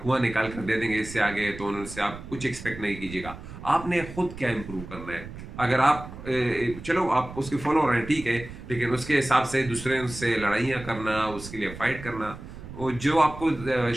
निकाल कर दे देंगे, इससे आगे तो उनसे आप कुछ एक्सपेक्ट नहीं कीजिएगा। आपने खुद क्या इम्प्रूव करना है? अगर आप चलो आप उसके फॉलो रहे हैं ठीक है, लेकिन उसके हिसाब से दूसरे से लड़ाइयाँ करना, उसके लिए फाइट करना, वो जो आपको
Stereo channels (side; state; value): right; noise; rumble, 13 dB below the sound